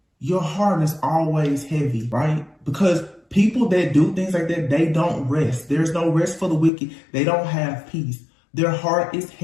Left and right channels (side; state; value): right; drops out; at 6.7 s